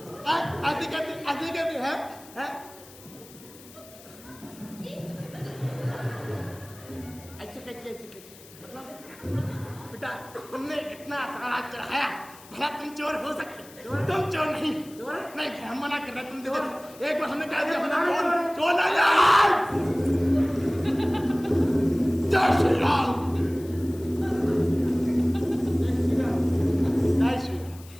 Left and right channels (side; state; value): left; noise; hiss, 21 dB below the sound